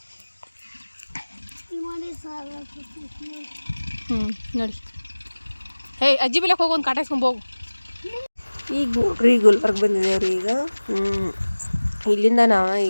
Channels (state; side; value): inverted; both; correlation -1.00